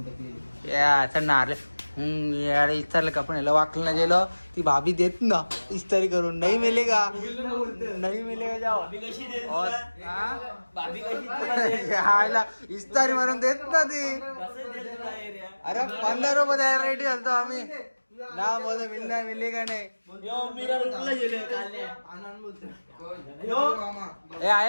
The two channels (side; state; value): both; inverted; correlation -1.00